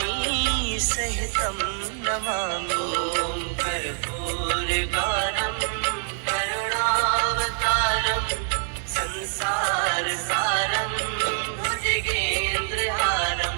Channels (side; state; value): left; silent; 60 dB below the other